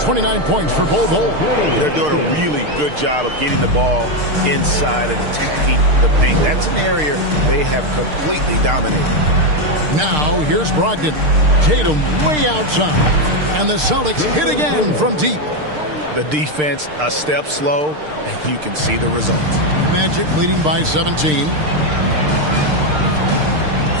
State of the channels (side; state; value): left; late; 6.6 ms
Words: 29 points for Bull. They're doing a really good job of getting the ball inside and attacking the paint. That's an area they have completely dominated. Now, here's Brogdon. Tatum way outside. And the Celtics hit again from deep. The defense a step slow, and you can see the results. Magic leading by 17.